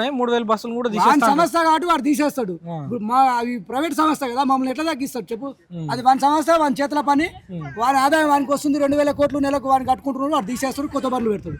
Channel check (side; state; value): both; identical; correlation 1.00